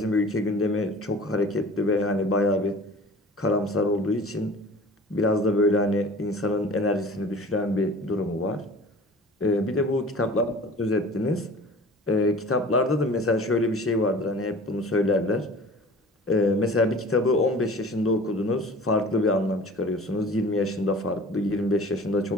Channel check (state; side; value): normal; both; correlation 0.43